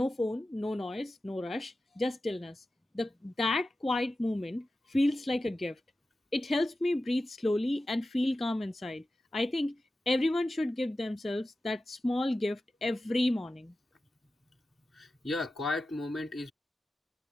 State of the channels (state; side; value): normal; both; correlation 0.94